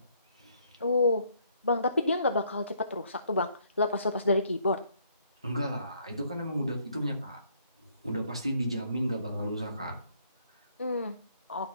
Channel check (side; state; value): both; inverted; correlation -0.67